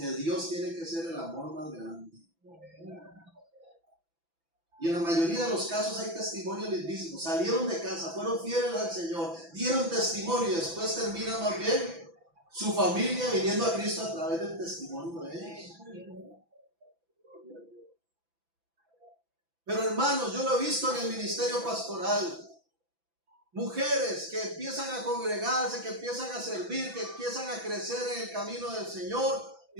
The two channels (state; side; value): late; left; 6.0 ms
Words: Dios tiene que ser el amor más grande. Y en la mayoría de los casos hay testimonios lindísimos. Salieron de casa, fueron fieles al Señor, dieron testimonio y después termina más bien su familia viniendo a Cristo a través del testimonio de ellos. Pero hermanos, yo lo he visto en el ministerio pastoral. Mujeres que empiezan a congregarse, que empiezan a servir, que empiezan a crecer en el camino del Señor